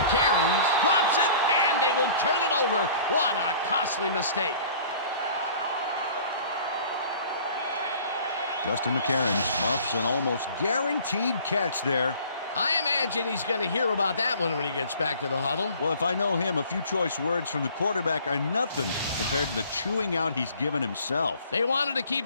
Cairns drops it, and they will turn it over. What a costly mistake. Justin McCarron muffs an almost guaranteed catch there. I imagine he's going to hear about that one when he gets back to the huddle. Well, if I know him, a few choice words from the quarterback are nothing compared to the chewing out he's given himself. They wanted to keep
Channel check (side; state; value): both; inverted; correlation -0.49